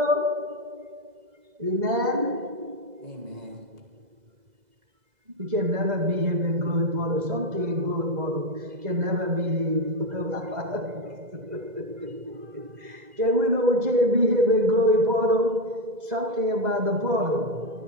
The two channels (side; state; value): left; late; 2.0 ms